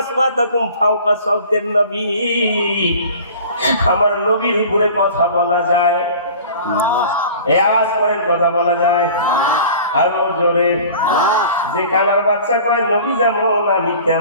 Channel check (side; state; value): both; inverted; correlation -0.43